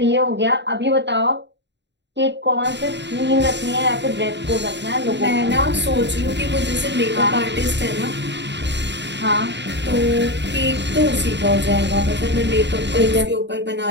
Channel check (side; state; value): left; late; 0.52 ms